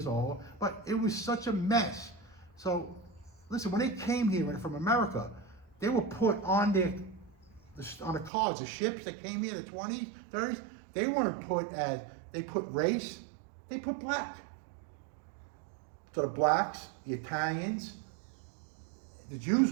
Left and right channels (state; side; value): drops out; left; at 8.3 s